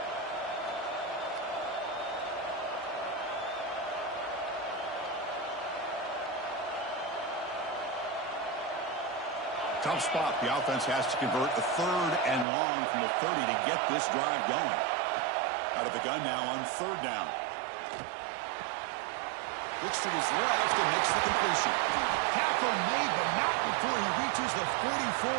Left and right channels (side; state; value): left; drops out; at 12.5 s